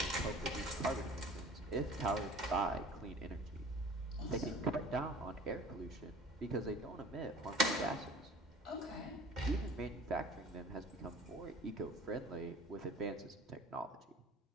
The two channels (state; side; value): normal; both; correlation 0.45